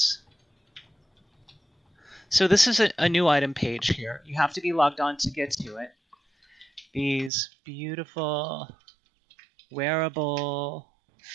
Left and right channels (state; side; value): drops out; left; at 7.3 s